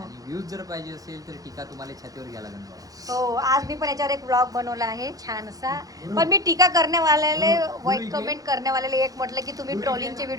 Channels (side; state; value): left; late; 0.17 ms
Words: व्ह्यूज जर पाहिजे असेल तर टीका तुम्हाला छातीवर घ्यायला लागणार. हो आज मी पण याच्यावर एक ब्लॉग बनवला आहे छान असा. पण मी टीका करण्यावाल्याले वाईट कमेंट करण्यावाल्याला एक म्हटलं की तुम्ही ट्रोलिंगचे